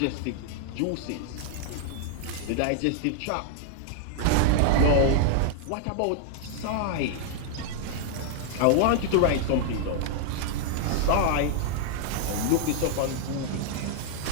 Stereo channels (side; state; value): both; different; correlation 0.00